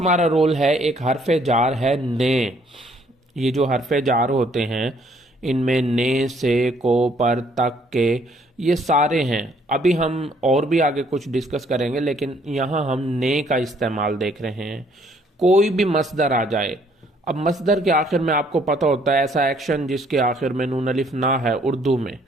رول ہے ایک حرف جار ہے نے۔ یہ جو حرف جار ہوتے ہیں ان میں نے، سے، کو، پر، تک، کے، یہ سارے ہیں۔ ابھی ہم اور بھی آگے کچھ ڈسکس کریں گے، لیکن یہاں ہم نے کا استعمال دیکھ رہے ہیں۔ کوئی بھی مصدر آ جائے، اب مصدر کے آخر میں آپ کو پتہ ہوتا ہے ایسا ایکشن جس کے آخر میں نون الف نہ ہے اردو میں،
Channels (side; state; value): both; normal; correlation 0.64